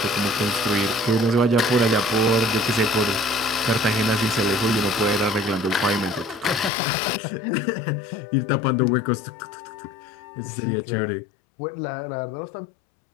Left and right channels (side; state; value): right; drops out; at 6.7 s